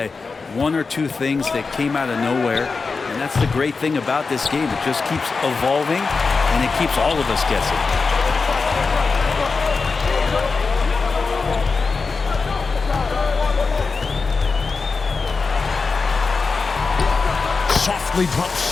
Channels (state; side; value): quieter; right; 4.5 dB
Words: 1 or 2 things that came out of nowhere. And that's the great thing about this game. It just keeps evolving, and it keeps all of us guessing. Softly